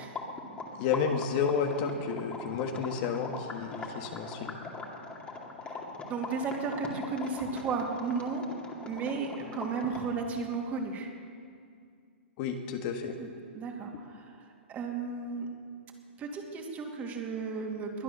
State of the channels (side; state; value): both; normal; correlation 0.03